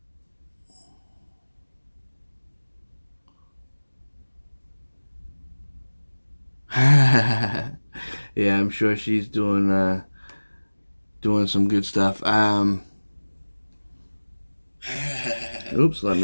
yeah, I'm sure she's doing some good stuff. Oops, let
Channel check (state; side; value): inverted; both; correlation -1.00